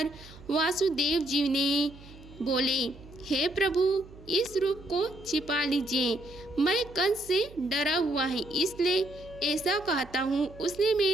वासुदेव जी ने बोले, हे प्रभु, इस रूप को छिपा लीजिए। मैं कंस से डरा हुआ है, इसलिए ऐसा कहता हूँ। उसने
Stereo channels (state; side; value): noise; right; hum, 19 dB below the sound